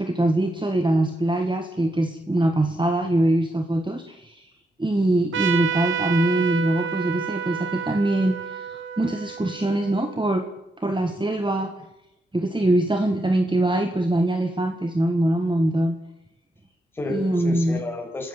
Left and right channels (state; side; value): normal; both; correlation 0.82